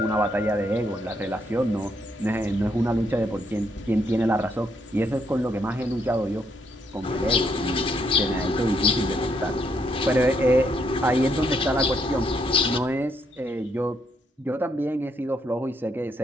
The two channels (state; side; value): normal; both; correlation 0.75